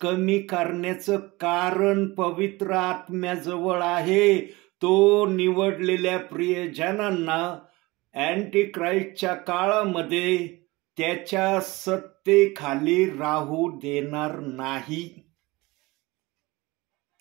करण्याचं कारण पवित्र आत्म्याजवळ आहे. तो निवडलेल्या प्रियजनांना अँटी क्राइस्टच्या काळामध्ये त्याच्या सत्तेखाली राहू देणार नाही.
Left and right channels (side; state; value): left; quieter; 22.1 dB